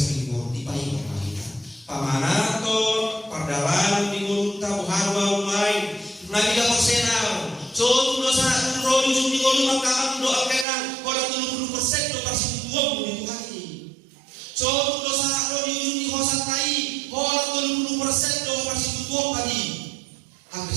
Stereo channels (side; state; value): left; drops out; at 10.7 s